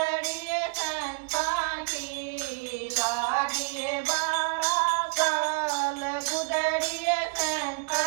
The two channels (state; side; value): quieter; left; 29.8 dB